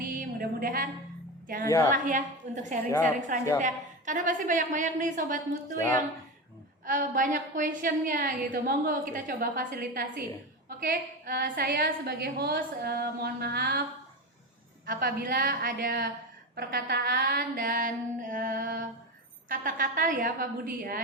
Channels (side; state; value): both; normal; correlation 0.21